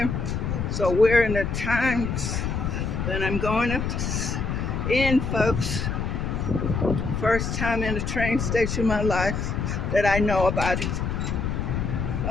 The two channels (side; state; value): left; noise; rumble, 2 dB below the sound